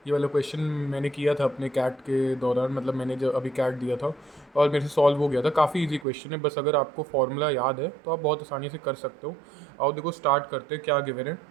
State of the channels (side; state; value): left; drops out; at 6.1 s